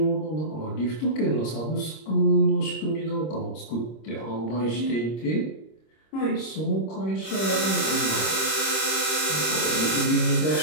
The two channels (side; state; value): right; late; 26 ms